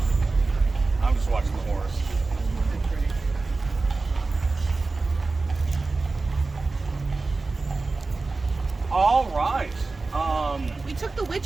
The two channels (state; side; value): quieter; left; 3.7 dB